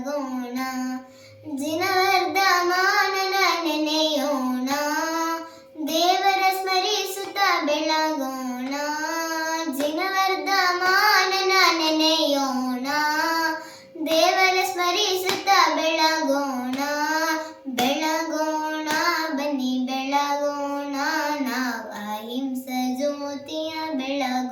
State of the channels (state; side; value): identical; both; correlation 1.00